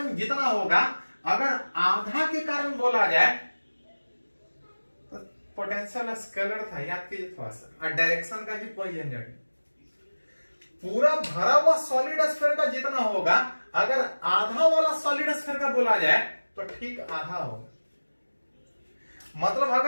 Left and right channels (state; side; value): inverted; both; correlation -1.00